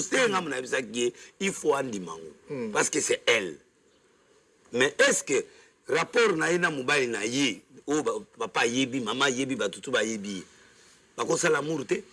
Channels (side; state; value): both; identical; correlation 1.00